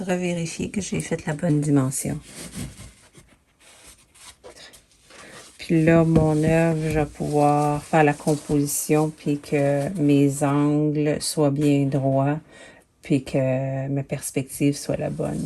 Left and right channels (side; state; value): both; identical; correlation 1.00